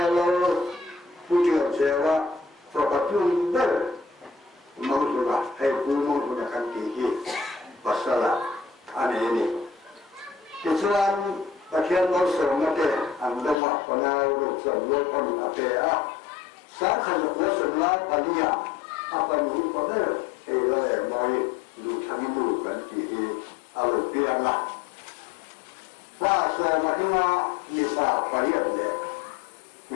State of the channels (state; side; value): drops out; right; at 13.6 s